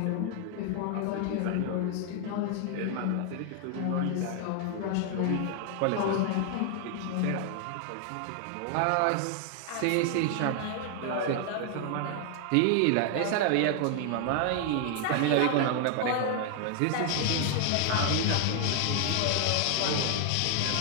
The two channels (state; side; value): different; both; correlation 0.00